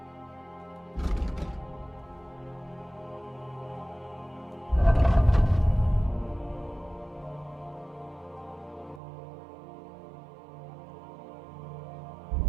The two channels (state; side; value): drops out; left; at 9.0 s